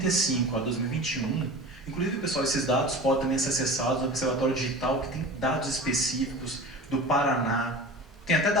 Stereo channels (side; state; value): both; normal; correlation 0.35